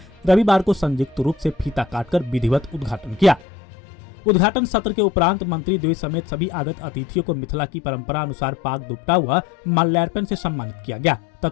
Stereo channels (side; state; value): right; drops out; at 3.5 s